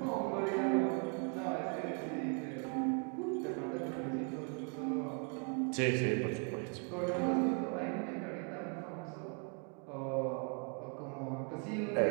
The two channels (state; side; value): quieter; left; 39.2 dB